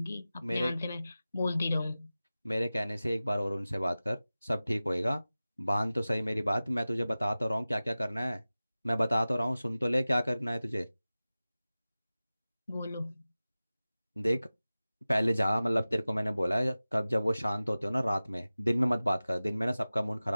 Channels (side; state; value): both; inverted; correlation -0.97